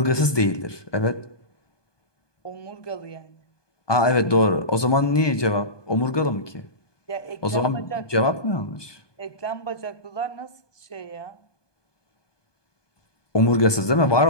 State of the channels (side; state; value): right; late; 1.2 ms